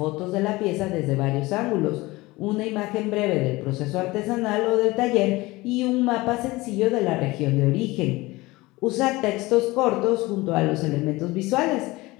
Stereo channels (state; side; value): quieter; right; 20.9 dB